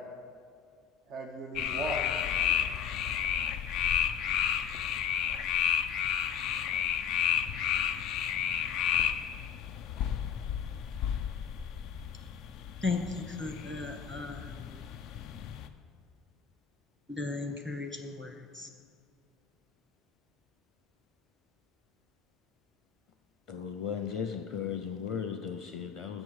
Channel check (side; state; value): right; quieter; 7.7 dB